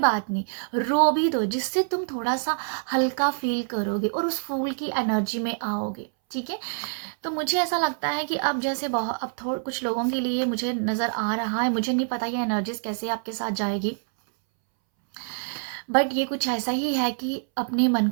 नहीं, रो भी दो, जिससे तुम थोड़ा सा हल्का फील करोगे और उस फूल की एनर्जी में आओगे, ठीक है। तो मुझे ऐसा लगता है कि अब जैसे बहुत अब थोड़ा कुछ लोगों के लिए मुझे नज़र आ रहा है, मुझे नहीं पता ये एनर्जीज कैसे आपके साथ जाएगी, बट ये कुछ ऐसा ही है कि अपने मन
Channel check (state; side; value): silent; left; 61 dB below the other